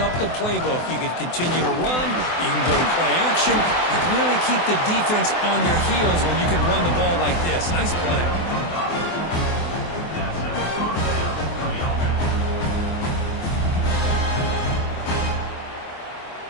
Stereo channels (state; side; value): late; right; 24 ms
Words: the playbook. You can continue to run, you can go to play action, and really keep the defense on their heels when you can run the ball like this. Nice play.